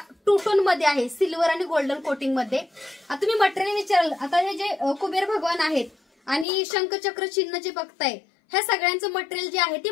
2 टोन मध्ये आहे, सिल्वर आणि गोल्डन कोटिंग मध्ये. आता तुम्ही मटेरियल विचाराल, आता हे जे कुबेर भगवान आहेत आणि शंखचक्र चिन्ह जे बघताय ह्या सगळ्यांचं मटेरियल जे आहे ते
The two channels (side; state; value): right; drops out; at 6.5 s